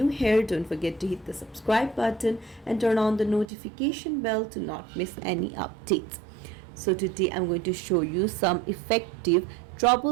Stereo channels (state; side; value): drops out; left; at 3.5 s